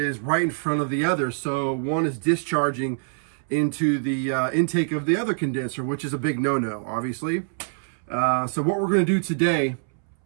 right in front of the other. So one is discharging into the intake of the other condenser, which is a big no-no, obviously. So what we're gonna do today,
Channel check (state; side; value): silent; left; 62 dB below the other